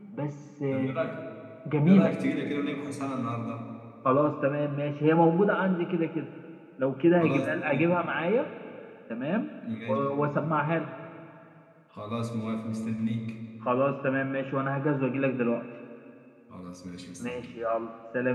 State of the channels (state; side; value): identical; both; correlation 1.00